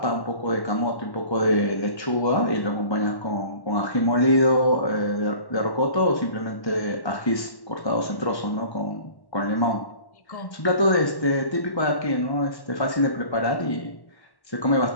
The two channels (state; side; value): late; right; 1.1 ms